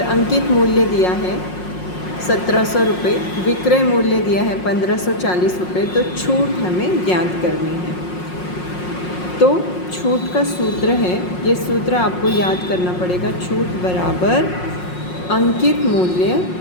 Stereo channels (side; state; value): right; late; 5.5 ms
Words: अंकित मूल्य दिया है 1700 रुपये, विक्रय मूल्य दिया है 1540 रुपये, तो छूट हमें ज्ञात करनी है। तो छूट का सूत्र है, ये सूत्र आपको याद करना पड़ेगा। छूट बराबर अंकित मूल्य